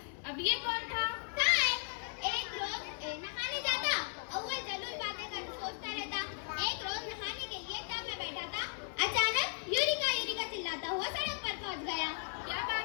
अब ये कौन था? एक रोज नहाने जाता, अव्वल जरूर बातें कर सोचता रहता। एक रोज नहाने के लिए टब में बैठा था, अचानक यूरिका यूरिका चिल्लाता हुआ सड़क पर पहुंच गया। क्या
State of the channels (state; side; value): silent; right; 54 dB below the other